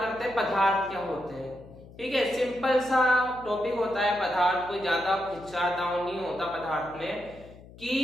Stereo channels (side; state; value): left; noise; hum, 20 dB below the sound